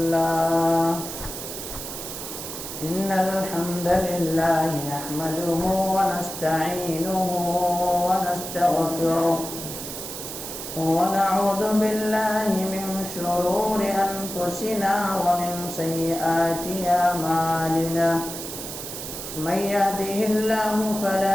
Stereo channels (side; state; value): right; noise; hiss, 8 dB below the sound